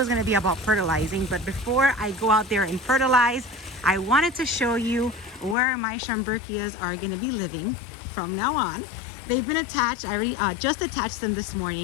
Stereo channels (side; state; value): right; drops out; at 5.6 s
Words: is going to be about fertilizing, but before I go out there and fertilize, I wanted to show you where my Schomburgkias are going to be living from now on. They've been attached. I already just attached them this